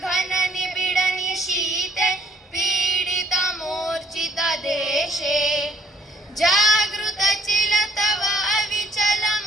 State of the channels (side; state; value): both; normal; correlation 0.64